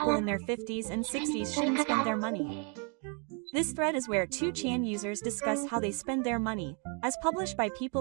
in their 50s and 60s shouldn't spend their money. This thread is where 2chan users discuss how they spend their money, as published by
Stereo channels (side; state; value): left; quieter; 37.7 dB